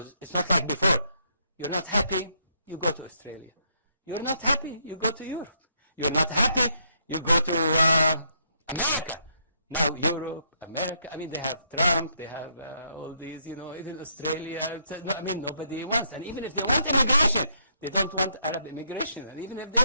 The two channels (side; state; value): both; inverted; correlation -0.73